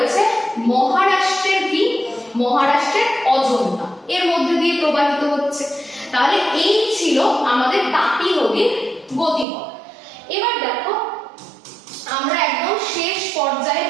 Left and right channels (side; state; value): left; drops out; at 9.5 s